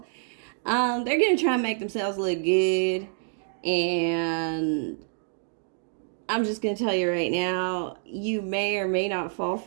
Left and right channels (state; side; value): silent; left; digital silence